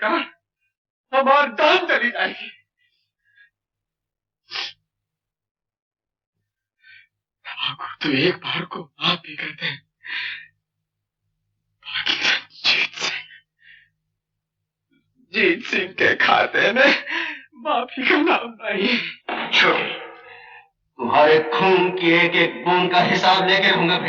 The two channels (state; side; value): identical; both; correlation 1.00